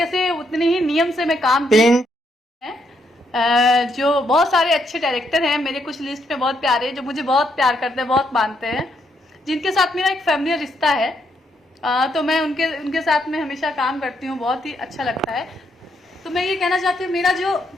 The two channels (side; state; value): both; normal; correlation 0.75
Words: से, उतने ही नियम से मैं काम जो बहुत सारे अच्छे डायरेक्टर हैं मेरे कुछ लिस्ट में बहुत प्यारे, जो मुझे बहुत प्यार करते हैं, बहुत मानते हैं, जिनके साथ मेरा एक फैमिली रिश्ता है। तो मैं उनके साथ में हमेशा काम करती हूँ, बहुत ही अच्छा लगता है। तो मैं ये कहना चाहती हूँ, मेरा जो